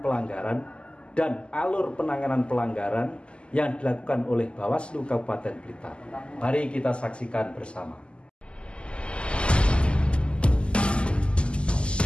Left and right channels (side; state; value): right; late; 0.052 ms